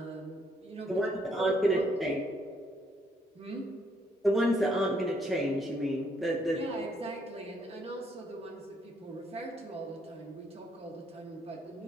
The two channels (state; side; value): normal; both; correlation 0.71